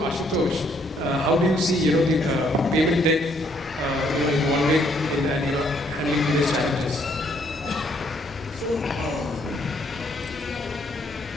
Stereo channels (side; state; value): both; normal; correlation 0.68